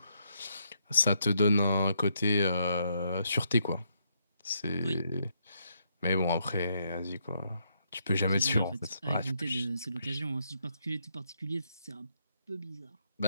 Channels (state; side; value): inverted; both; correlation -0.76